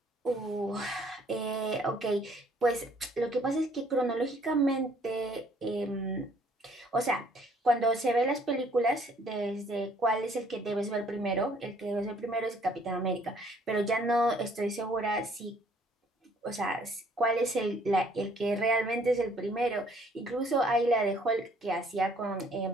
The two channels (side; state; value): both; normal; correlation 0.61